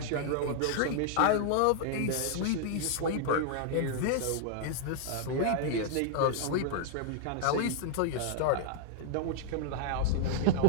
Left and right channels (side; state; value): both; different; correlation -0.01